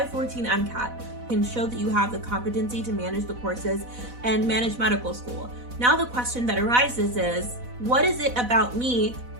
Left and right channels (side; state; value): left; late; 4.1 ms